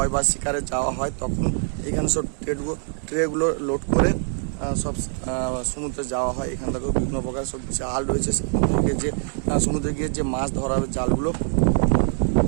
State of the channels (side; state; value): left; silent; 57 dB below the other